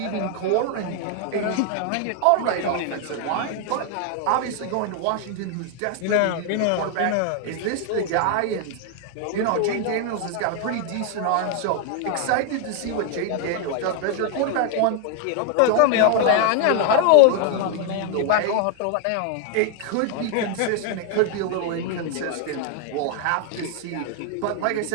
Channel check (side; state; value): both; different; correlation 0.00